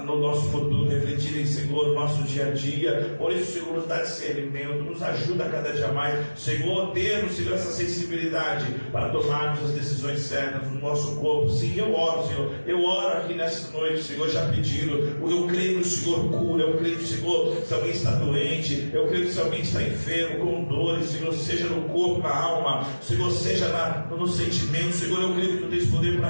no nosso futuro, refletirem, Senhor, no nosso dia a dia. Por isso, Senhor, nos dá discernimento, nos ajuda a cada dia mais, Senhor, termos, Senhor, essa sensibilidade para tomarmos as decisões certas no nosso corpo. Sim, eu oro, Senhor, eu oro aqui nessa noite, Senhor, já pedindo. Eu creio que o Senhor cura, eu creio que o Senhor, se alguém está doente, eu creio que se alguém está enfermo, com dores, Senhor, seja no corpo, na alma, Senhor, seja no sentimento, Senhor, eu creio que Tu tens poder para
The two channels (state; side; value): inverted; both; correlation -1.00